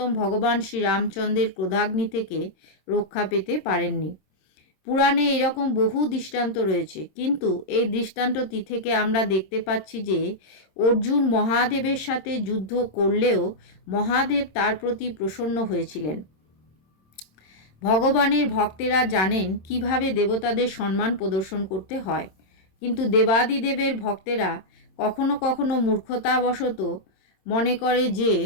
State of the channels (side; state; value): right; late; 27 ms